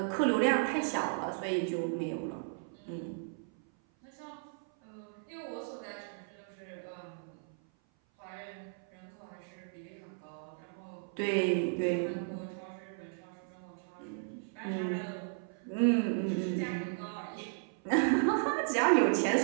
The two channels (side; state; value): left; silent; 54 dB below the other